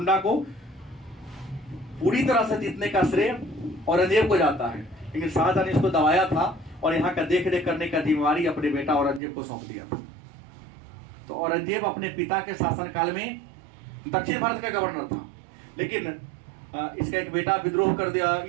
को पूरी तरह से जीतने का श्रेय औरंगजेब को जाता है, लेकिन शाहजहां ने इसको दबाया था और यहाँ का देख रेख करने का जिम्मेवारी अपने बेटा औरंगजेब को सौंप दिया था। तो औरंगजेब अपने पिता के शासनकाल में दक्षिण भारत का गवर्नर था, लेकिन इसका एक बेटा विद्रोह कर दिया,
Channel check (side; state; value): left; drops out; at 9.2 s